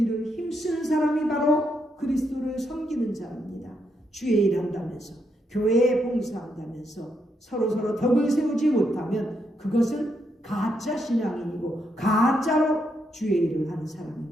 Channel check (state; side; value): normal; both; correlation 0.79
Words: 힘쓰는 사람이 바로 그리스도를 섬기는 자입니다. 주의 일 한다면서, 교회에 봉사한다면서 서로 덕을 세우지 못하면 그것은 가짜 신앙인이고 가짜로 주의 일을 하는